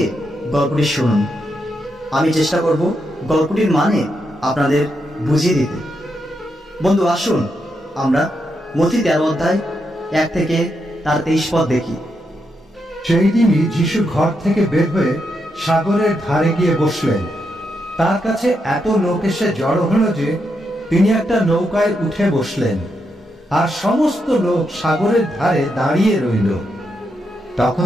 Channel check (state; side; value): normal; both; correlation 0.82